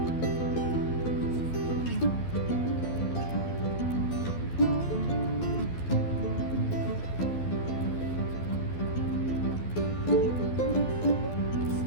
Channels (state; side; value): late; right; 12 ms